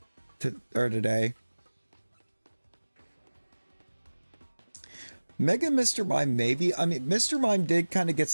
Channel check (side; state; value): both; inverted; correlation -1.00